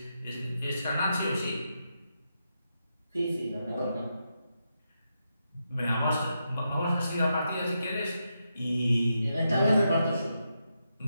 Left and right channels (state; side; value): inverted; both; correlation -0.85